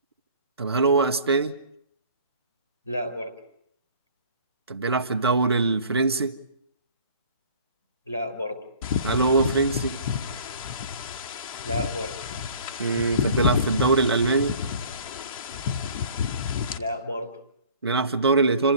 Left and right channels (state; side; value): inverted; both; correlation -0.49